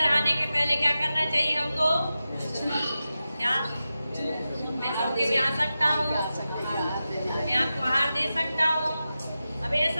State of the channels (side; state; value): both; inverted; correlation -0.93